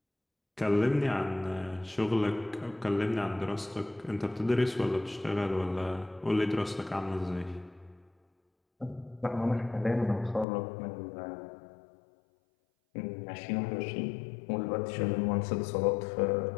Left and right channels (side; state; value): right; drops out; at 10.5 s